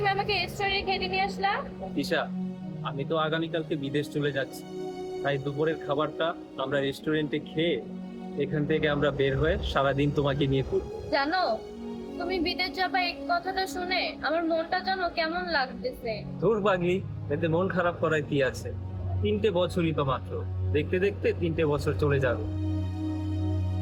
আমাকে রেস্টুরেন্টে খেতে নিয়ে আসলা? দিশা, আমি তো আগামীকালকে বিদেশ চলে যাচ্ছি, তাই দুপুরের খাবারটা আমরা রেস্টুরেন্টে খেয়ে এখান থেকে আমরা বের হয়ে সারাদিন তোমাকে নিয়ে ঘুরবো। জানো, তুমি বিদেশ যাবা এই কথাটা শুনে আমার মনটা জানো কেমন লাগতেছে। ধুর পাগলি, এতে মন খারাপ করার কি আছে? 3টে বছরই তো মাত্র, দেখতে দেখতে 3টে বছর চলে যাবে।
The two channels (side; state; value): both; identical; correlation 1.00